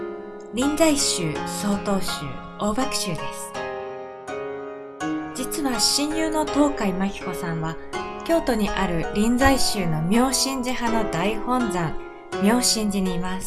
臨済宗、曹洞宗、大爆宗です。実は親友の東海真紀子さんは京都にある臨済宗の妙心寺派の大本山妙心寺にいま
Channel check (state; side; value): identical; both; correlation 1.00